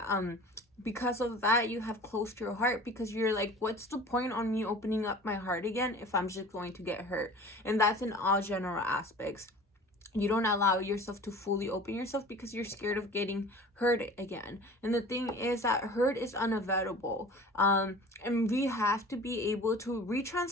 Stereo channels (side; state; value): both; normal; correlation 0.42